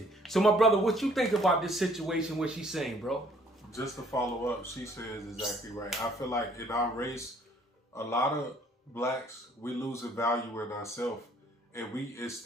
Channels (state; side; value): normal; both; correlation 0.60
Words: So my brother, what you think about this situation, what she's saying, bro? Just to follow up, she says exactly right. I feel like in our race, a lot of blacks, we losing value in ourselves. And we,